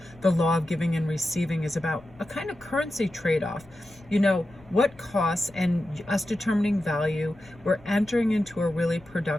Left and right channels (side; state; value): left; noise; rumble, 25 dB below the sound